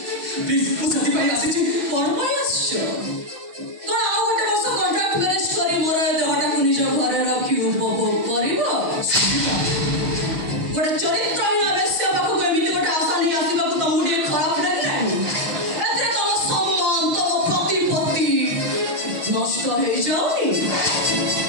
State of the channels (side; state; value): left; late; 6.1 ms